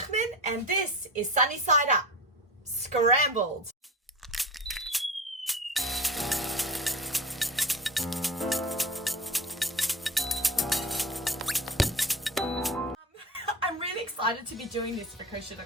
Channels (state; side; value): normal; both; correlation 0.32